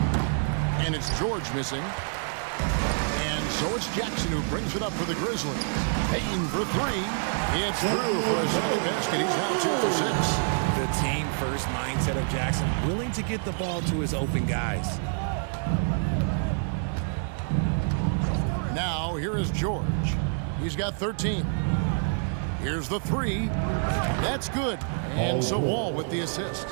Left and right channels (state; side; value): silent; left; 60 dB below the other